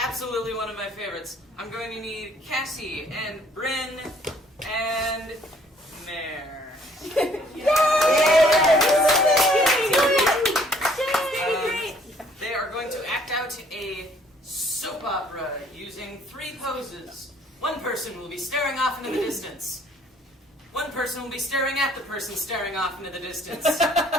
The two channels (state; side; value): normal; both; correlation 0.60